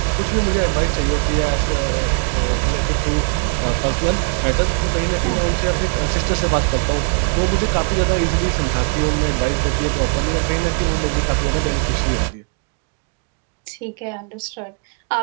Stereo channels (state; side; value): quieter; left; 39.1 dB